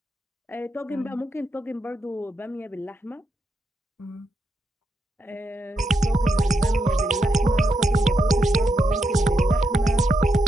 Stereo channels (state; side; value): normal; both; correlation 0.83